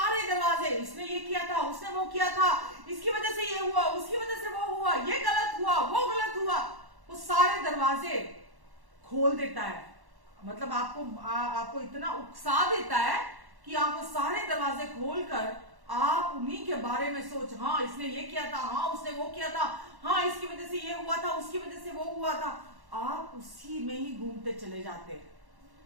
दरवाजे, इसने ये किया था, उसने वो किया था, इसकी वजह से ये हुआ, उसकी वजह से वो हुआ, ये गलत हुआ, वो गलत हुआ, वो सारे दरवाजे खोल देता है। मतलब आपको इतना उकसा देता है कि आप वो सारे दरवाजे खोलकर आप उन्हीं के बारे में सोच, हाँ इसने ये किया था, हाँ उसने वो किया था, हाँ इसकी वजह से ये हुआ था, उसकी वजह से वो हुआ था। आप उसी में ही घूमते चले जाते हैं।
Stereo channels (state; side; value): late; left; 1.1 ms